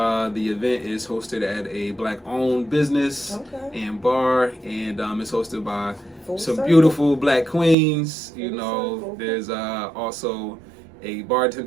The event is hosted at a Black-owned business and bar, and it's hosted by some beautiful Black queens. There's also a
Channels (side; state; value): left; drops out; at 7.8 s